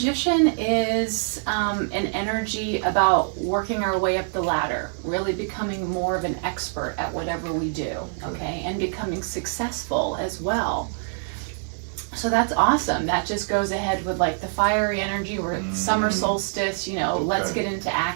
is an energy about working our way up the ladder, really becoming more of an expert at whatever we do, okay, and becoming successful as well. So that's awesome. That just goes ahead with like the fiery energy. We're summer solstice, let's get into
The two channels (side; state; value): left; silent; 58 dB below the other